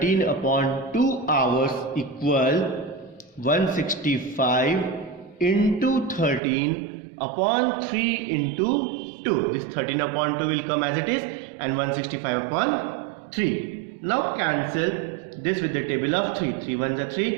upon 2 hours equal 165 into 13 upon 3 into 2. This 13 upon 2 will come as it is and 165 upon 3. Now cancel this with the table of 3. 3 1s are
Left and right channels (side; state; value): left; drops out; at 6.4 s